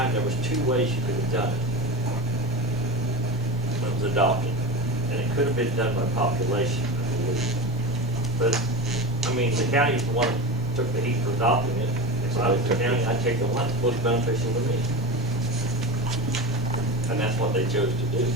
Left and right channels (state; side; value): noise; right; hum, 27 dB below the sound